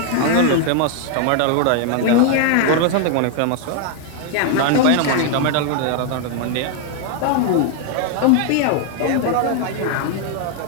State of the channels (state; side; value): different; both; correlation 0.00